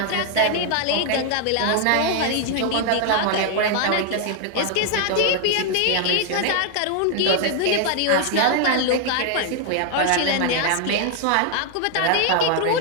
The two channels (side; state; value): both; different; correlation 0.00